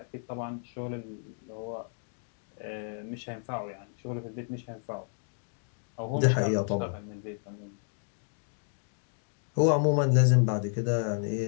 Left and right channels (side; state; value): right; silent; digital silence